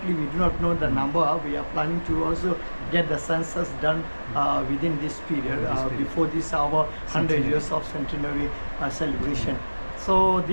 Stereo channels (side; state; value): both; inverted; correlation -1.00